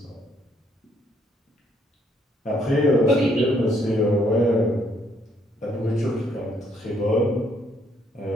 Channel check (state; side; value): normal; both; correlation 0.69